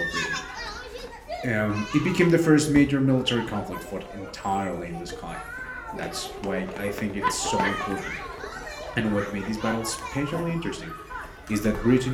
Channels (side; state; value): both; identical; correlation 1.00